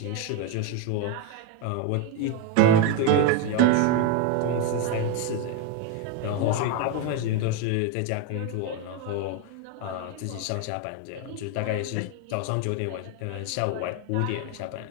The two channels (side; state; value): both; different; correlation 0.02